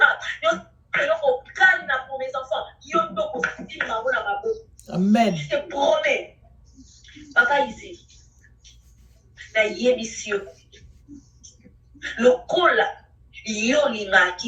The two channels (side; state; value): both; identical; correlation 1.00